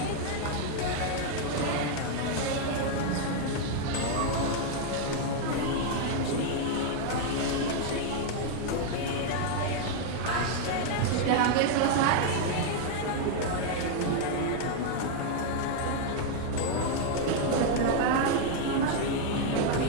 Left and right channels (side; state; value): both; different; correlation 0.00